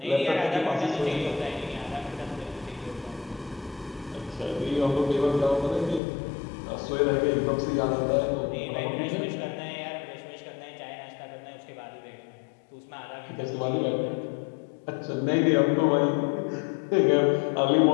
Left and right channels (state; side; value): drops out; right; at 6.0 s